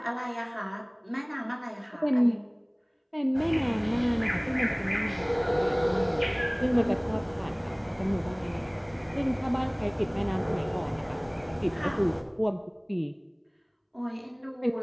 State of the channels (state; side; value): identical; both; correlation 1.00